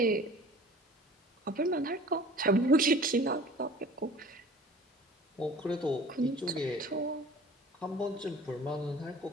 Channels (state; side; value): normal; both; correlation 0.45